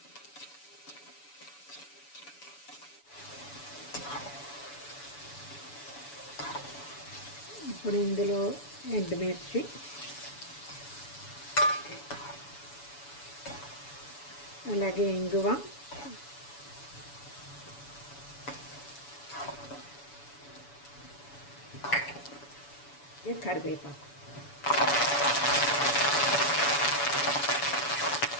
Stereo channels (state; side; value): late; right; 7.0 ms